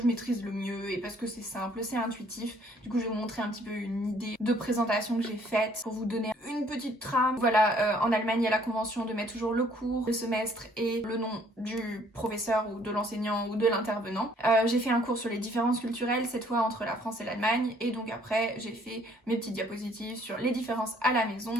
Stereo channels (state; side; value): normal; both; correlation 0.61